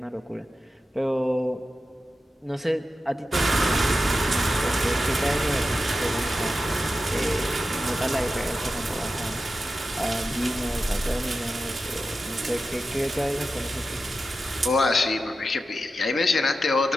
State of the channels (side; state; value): both; normal; correlation 0.91